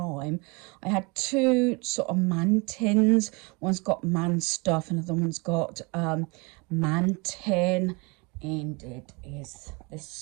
I had 2 sort of man tins. One's got man stuff and the other one's got man tin, and it is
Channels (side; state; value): left; quieter; 29.0 dB